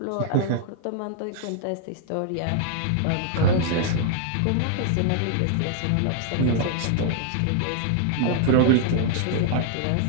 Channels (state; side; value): different; both; correlation 0.00